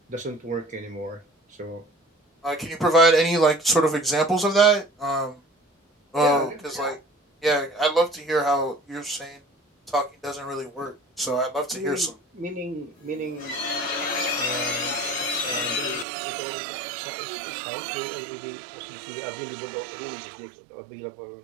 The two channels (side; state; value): left; drops out; at 16.1 s